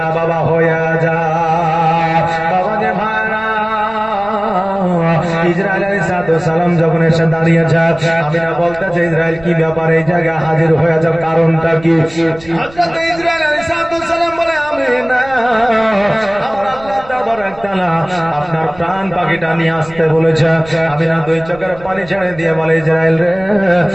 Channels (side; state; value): right; noise; rumble, 20 dB below the sound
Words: বাবা হয়ে যায়। বাবা যে ভাইরা, ইসরাইল আলাইহিস সালাম যখন এসে দাঁড়িয়েছে, আমিনা বলতেছে, ইসরাইল কি ব্যাপার, এই জায়গায় হাজির হয়ে যাও, কারণটা কি? হযরত ইসরাইল আলাইহিস সালাম বলে, আমিনা, আমার আল্লাহ তাবারক তাআলা আপনার প্রাণ পাখিটা নিয়ে আসতে বলেছে। আমিনা 2 চোখের পানি ছেড়ে দিয়ে বলে, ইসরাইল রে,